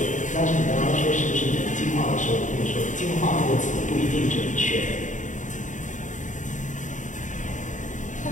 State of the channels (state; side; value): late; right; 0.36 ms